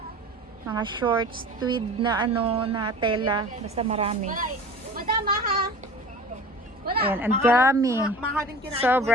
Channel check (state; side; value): normal; both; correlation 0.39